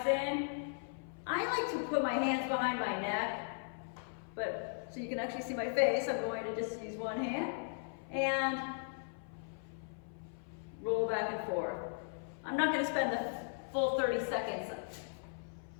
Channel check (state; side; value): silent; right; 53 dB below the other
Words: in. I like to put my hands behind my neck, but so you can actually see my face, I'm going to just use one hand and roll back and forth. I'm not gonna spend the full 30 seconds